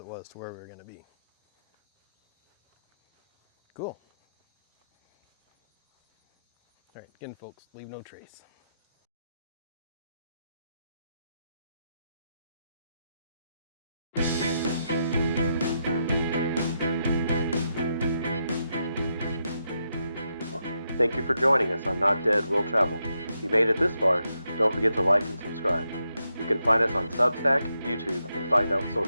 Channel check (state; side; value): inverted; both; correlation -0.83